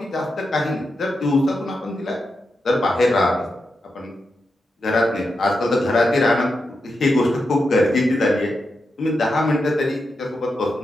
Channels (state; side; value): normal; both; correlation 0.87